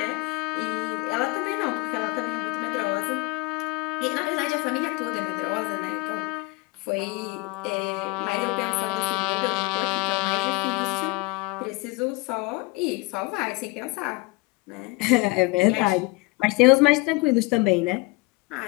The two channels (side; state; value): right; quieter; 24.6 dB